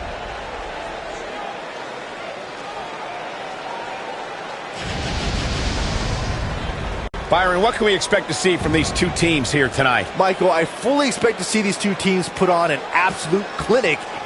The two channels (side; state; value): both; identical; correlation 1.00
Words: Byron, what can we expect to see from these two teams here tonight? Michael, I fully expect to see these two teams put on an absolute clinic